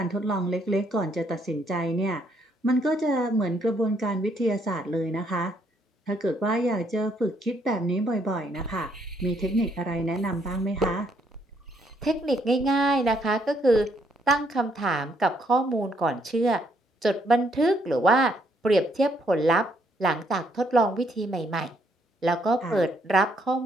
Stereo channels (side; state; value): both; normal; correlation 0.71